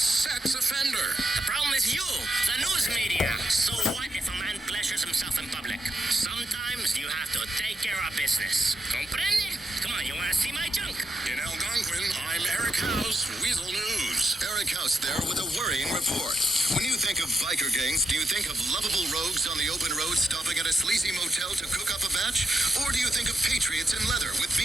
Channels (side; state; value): both; normal; correlation 0.81